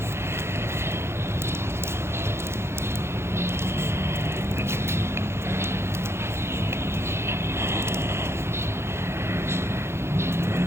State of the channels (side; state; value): left; late; 0.12 ms